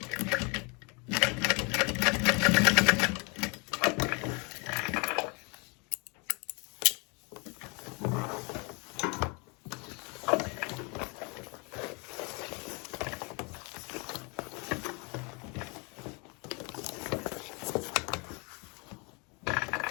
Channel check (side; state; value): right; quieter; 31.4 dB